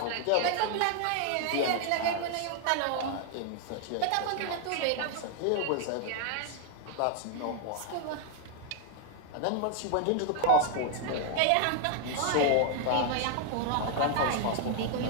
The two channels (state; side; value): different; both; correlation 0.00